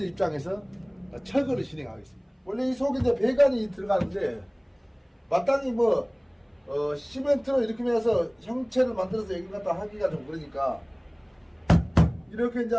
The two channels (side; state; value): both; identical; correlation 1.00